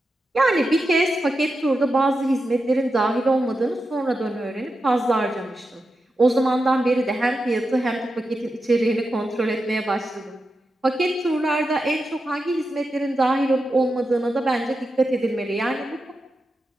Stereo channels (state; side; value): normal; both; correlation 0.89